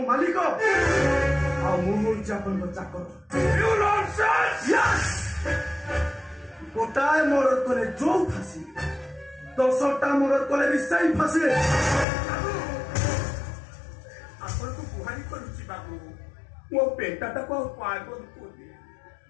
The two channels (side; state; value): right; drops out; at 12.1 s